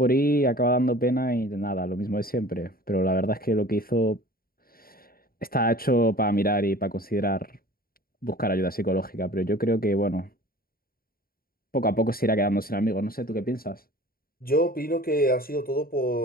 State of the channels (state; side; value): late; right; 0.43 ms